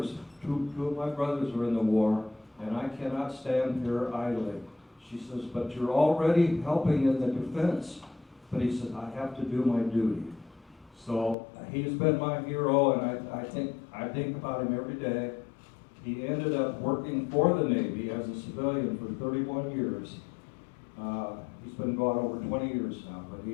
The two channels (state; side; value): drops out; right; at 11.4 s